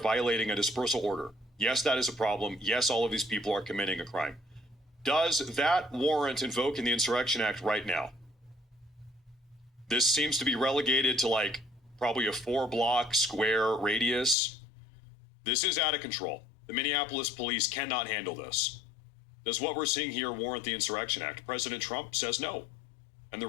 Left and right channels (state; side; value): drops out; right; at 14.4 s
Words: a dispersal order. Yes, that is a problem. Yes, all of these people are committing a crime. Does that warrant invoking the Insurrection Act right now? This seems to be relegated to like probably a 4-block square radius. This is out of control. The Minneapolis police cannot handle this. Does what we're seeing here warrant the Insurrection Act? President Trump says no. And the